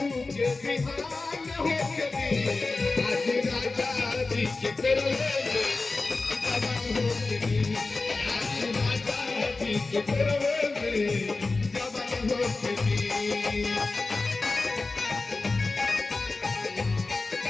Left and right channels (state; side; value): quieter; right; 3.6 dB